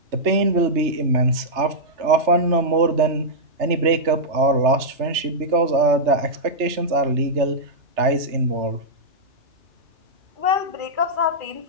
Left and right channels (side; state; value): left; late; 3.3 ms